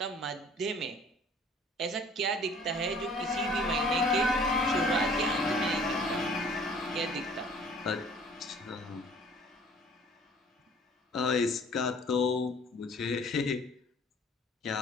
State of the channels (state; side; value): normal; both; correlation 0.52